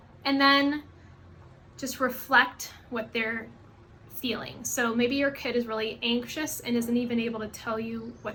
And then just reflect what they're feeling. So maybe your kid is really anxious and isn't even able to tell you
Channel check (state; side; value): identical; both; correlation 1.00